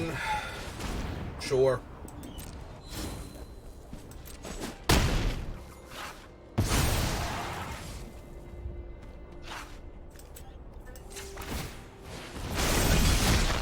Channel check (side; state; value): both; identical; correlation 1.00